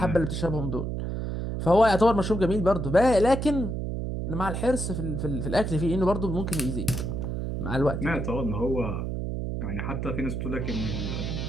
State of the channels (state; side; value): noise; right; hum, 3 dB below the sound